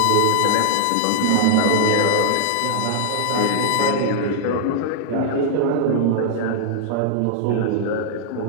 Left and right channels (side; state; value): both; different; correlation -0.01